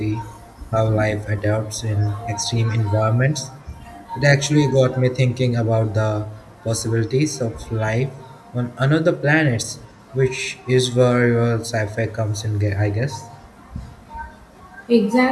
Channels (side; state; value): both; identical; correlation 1.00